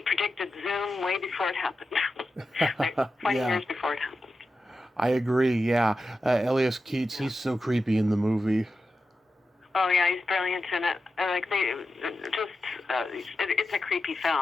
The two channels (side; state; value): both; normal; correlation 0.91